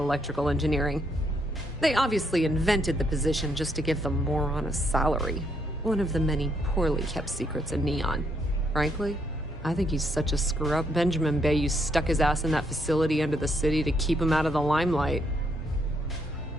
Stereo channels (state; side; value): normal; both; correlation 0.74